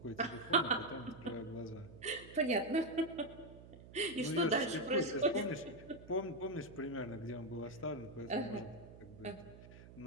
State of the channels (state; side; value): noise; right; hum, 17 dB below the sound